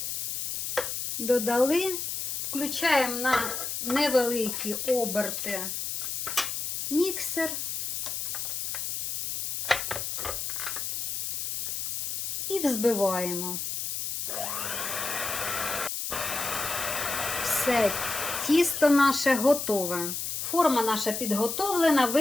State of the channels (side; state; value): left; noise; hiss, 3 dB below the sound